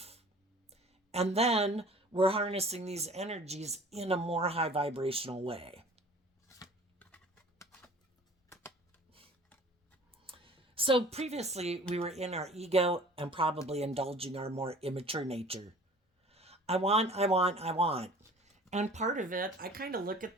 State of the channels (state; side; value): normal; both; correlation 0.46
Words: And then we're harnessing these energies in a more high vibrational way. So previously, we were in our ego and probably indulging our more immature nature. I want, I want, I want. And part of it, I kind of look